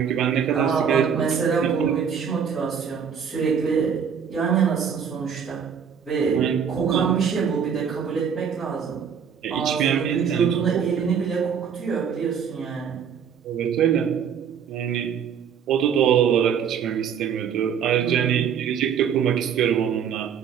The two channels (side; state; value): left; quieter; 7.5 dB